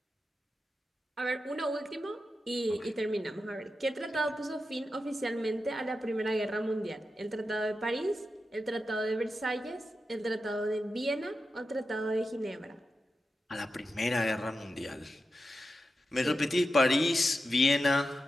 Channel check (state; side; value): normal; both; correlation 0.89